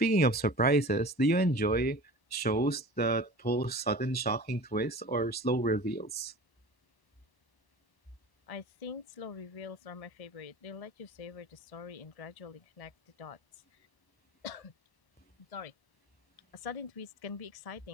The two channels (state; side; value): late; right; 1.0 ms